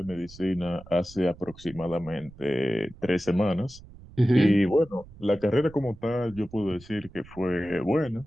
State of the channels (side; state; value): right; noise; rumble, 20 dB below the sound